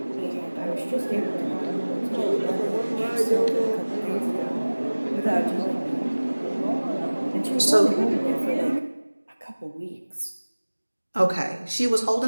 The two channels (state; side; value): inverted; both; correlation -1.00